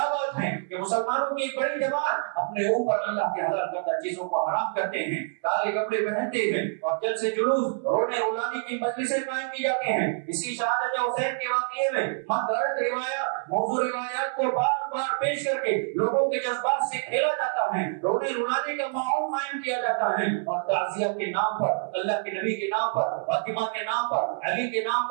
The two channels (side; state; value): left; silent; 60 dB below the other